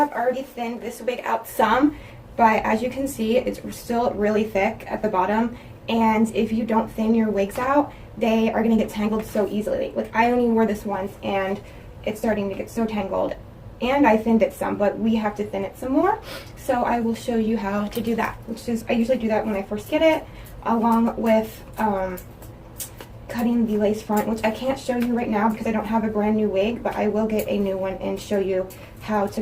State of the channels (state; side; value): identical; both; correlation 1.00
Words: already thinned this wig out some, but as you can see, it's still really thick at the bottom. And if you don't thin your wigs out, they are going to get tangled so easily. Like, I only wore this once and it's starting to get so tangled. And I thinned it some, but we have to thin it some more. So I will show you how to do that, which is, I usually do that when I first get it, along with cutting the lace front, which I can't show you right now because I don't have a brand new wig, but I will get a new one and show you how